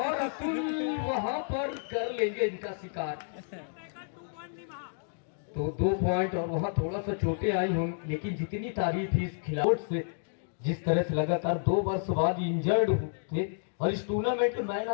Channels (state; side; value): silent; right; digital silence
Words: अतुल वहां पर कर लेंगे इनका शिकार। तो 2 पॉइंट, और वहां थोड़ा सा चोटें आई होंगी, लेकिन जितनी तारीफ इस खिलाड़ी से, जिस तरह से लगातार 2 वर्ष बाद इंजर्ड थे और इस टूर्नामेंट के मैन